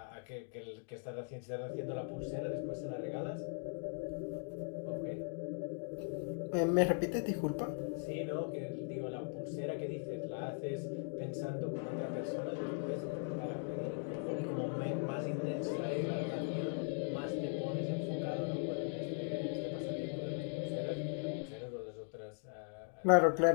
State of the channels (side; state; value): right; silent; 52 dB below the other